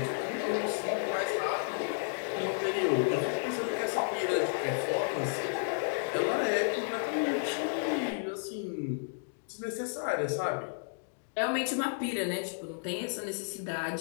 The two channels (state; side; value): silent; right; digital silence